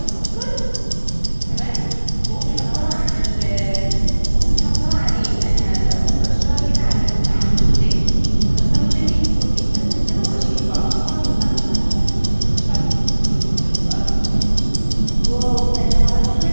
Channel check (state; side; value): inverted; both; correlation -1.00